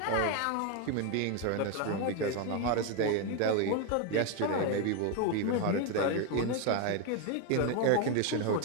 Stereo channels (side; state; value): both; different; correlation 0.01